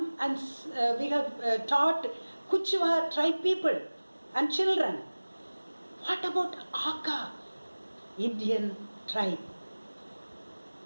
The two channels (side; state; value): both; inverted; correlation -1.00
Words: and we have taught Kuchwa tribe people and children. What about Aka Indian tribe?